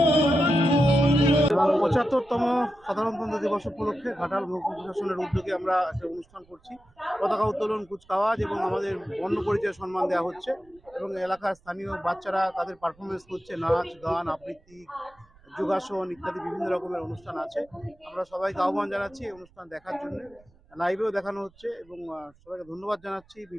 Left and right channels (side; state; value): right; noise; rumble, 29 dB below the sound